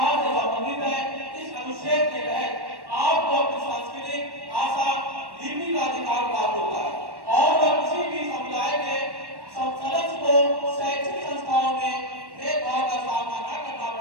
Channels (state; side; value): late; left; 1.1 ms